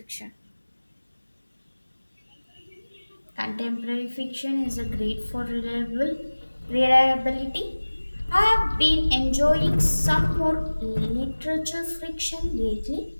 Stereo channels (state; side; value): inverted; both; correlation -1.00